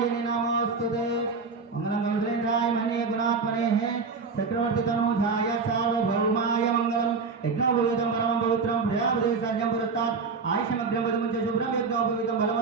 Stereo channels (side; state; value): left; quieter; 4.7 dB